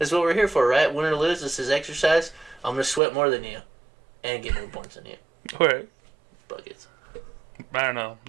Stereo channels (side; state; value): left; drops out; at 3.0 s